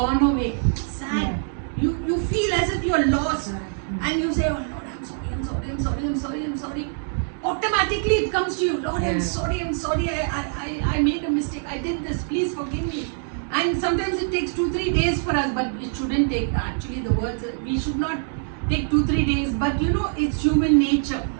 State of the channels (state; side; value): silent; left; 61 dB below the other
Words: away. Sad. You feel as if you're lost. And you say, oh Lord, I'm sorry. Automatically it comes to you, Lord, I'm sorry, I made a mistake, I did this, please forgive me. And sometimes it takes 2-3 days for us, but it shouldn't take, actually the words, we should not take 2-3 days, but you know, it's human nature.